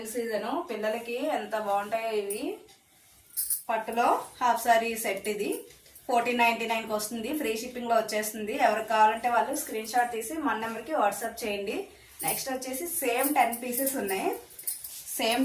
సీజన్. పిల్లలకి ఎంత బాగుంటాయో ఇవి. పట్టులో హాఫ్ సారీ సెట్ ఇది 1499కి వస్తుంది. ఫ్రీ షిప్పింగ్ లో వచ్చేస్తుంది. ఎవరికి కావాలంటే వాళ్ళు స్క్రీన్ షాట్ తీసి మన నెంబర్కి వాట్సాప్ చేయండి. నెక్స్ట్ వచ్చేసి సేమ్ 10 పీసెస్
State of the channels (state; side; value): identical; both; correlation 1.00